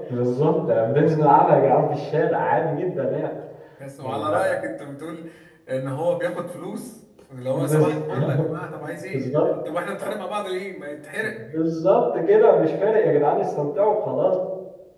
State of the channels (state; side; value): identical; both; correlation 1.00